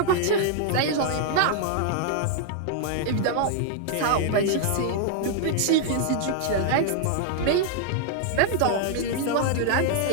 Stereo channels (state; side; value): different; both; correlation -0.01